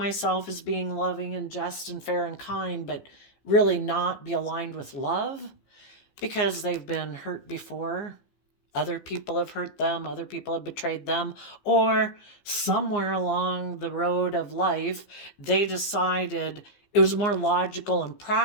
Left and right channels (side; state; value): right; late; 15 ms